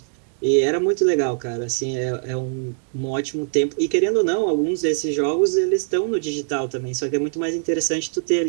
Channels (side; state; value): left; silent; digital silence